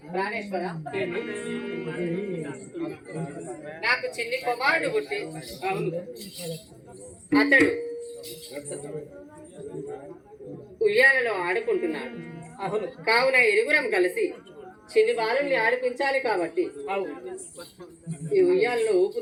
ప్రాణేశ్వర, నాకు చిన్ని కుమారుడు పుట్టి అతడు ఉయ్యాలలో ఆడుకుంటున్నాడు. కావున ఇరుగురం కలిసి చిన్ని బాలుల్ని ఆడిపించాలి కాబట్టి ఈ ఉయ్యాలలో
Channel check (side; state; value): both; identical; correlation 1.00